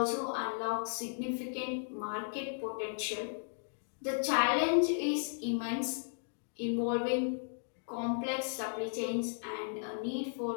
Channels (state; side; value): silent; right; digital silence